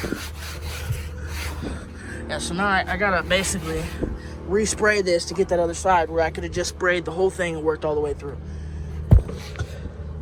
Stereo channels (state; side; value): identical; both; correlation 1.00